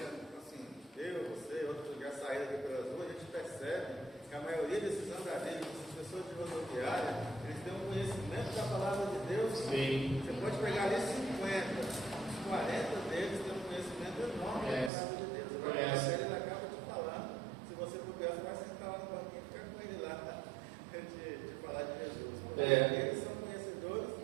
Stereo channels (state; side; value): drops out; left; at 14.9 s